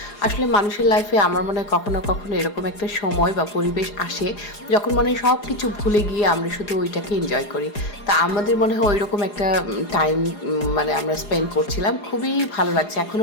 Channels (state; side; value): late; right; 4.8 ms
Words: আসলে মানুষের লাইফে আমার মনে হয় কখনো কখনো এরকম একটা সময় বা পরিবেশ আসে যখন মনে হয় সব কিছু ভুলে গিয়ে আমরা শুধু ওইটাকে এনজয় করি। তা আমাদের মনে হয় ওই রকম একটা টাইম মানে আমরা স্পেন্ড করছিলাম, খুবই ভালো লাগছে,